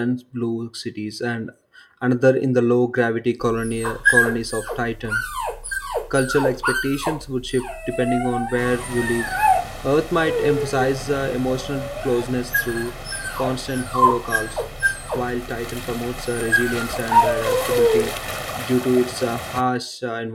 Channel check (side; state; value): both; identical; correlation 1.00